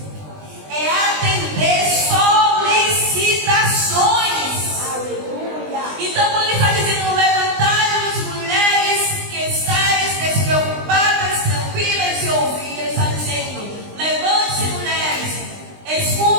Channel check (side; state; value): left; late; 20 ms